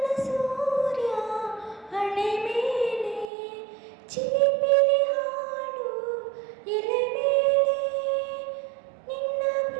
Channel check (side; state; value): left; drops out; at 3.3 s